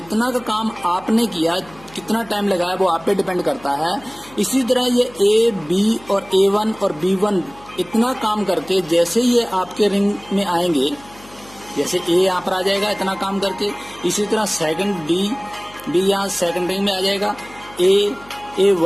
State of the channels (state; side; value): noise; left; hum, 23 dB below the sound